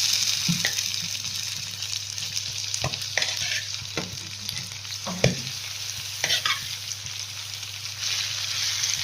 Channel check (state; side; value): identical; both; correlation 1.00